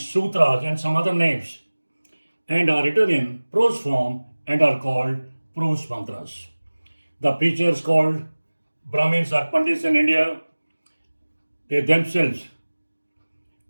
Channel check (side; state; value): both; inverted; correlation -1.00